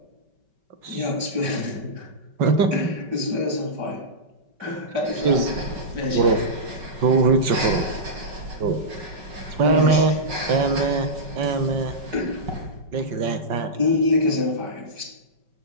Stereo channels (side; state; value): left; late; 5.2 ms